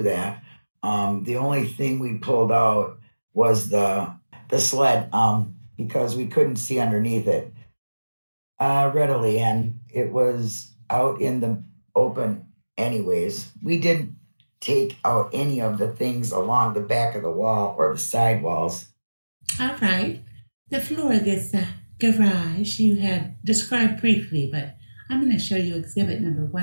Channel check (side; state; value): both; inverted; correlation -1.00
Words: that. The only thing we pulled out was the sled because we couldn't see underneath it readily, and it was out in the open anyways. We didn't take out any of the things along the back of the wall or the side walls. All right. The floor of this garage you had described briefly, but I'm going to show you exhibit number